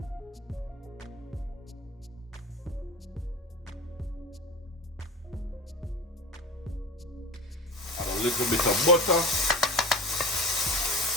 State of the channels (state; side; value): normal; both; correlation 0.31